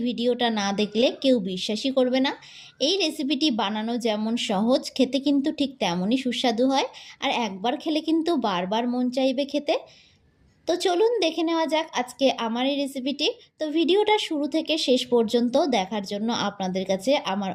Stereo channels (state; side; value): identical; both; correlation 1.00